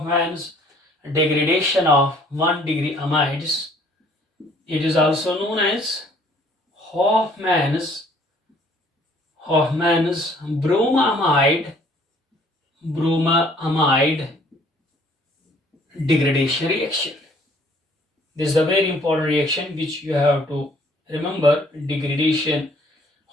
degradation of 1 degree amides. It is also known as Hoffman's Bruma amide degradation reaction. This is a very important reaction which you have to remember. Degradation,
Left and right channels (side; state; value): both; normal; correlation 0.59